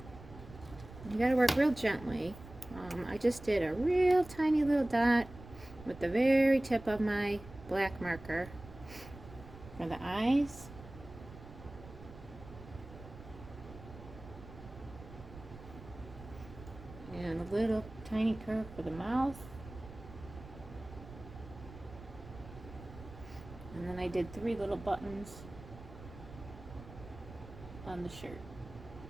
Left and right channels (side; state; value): right; noise; rumble, 16 dB below the sound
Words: you gotta work real gently. I just did a real tiny little dot with the very tip of my black marker for the eyes. And a little tiny curve for the mouth. And then I did 3 little buttons on the shirt.